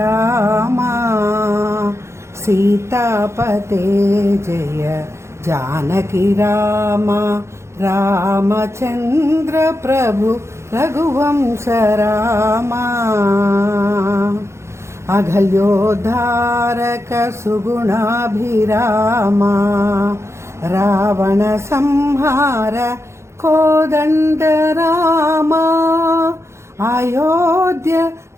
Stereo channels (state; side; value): late; left; 0.13 ms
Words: சீதாபதே ஜெய ஜானகி ராமா. ராமச்சந்திர பிரபு ரகுவம்ச ராமா அகல்யோத்தாரக சுகுணாபிராமா ராவண சம்ஹார கோதண்ட ராமா அயோத்திய